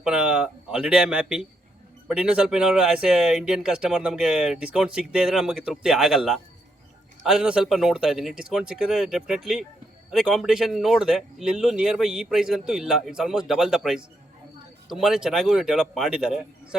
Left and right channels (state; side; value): normal; both; correlation 0.78